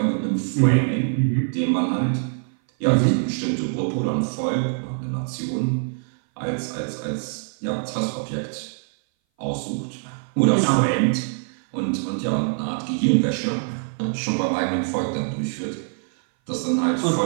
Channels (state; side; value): silent; left; 59 dB below the other